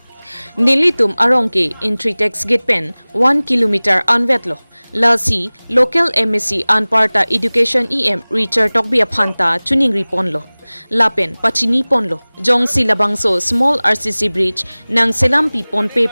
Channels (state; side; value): inverted; both; correlation -1.00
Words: Nilitum arongke intritex gate pen 1 kilometer anvetlo lasi local MSc anparta education EM Richard Tokbia Phanta chuning riponlo lapen pachini ponlo jong silabangso small RCC bridge nang selampi ponpe